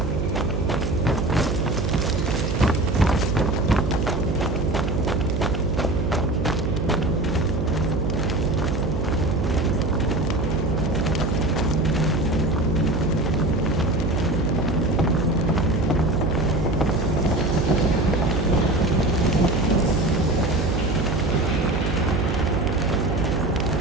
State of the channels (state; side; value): noise; right; hum, 1 dB below the sound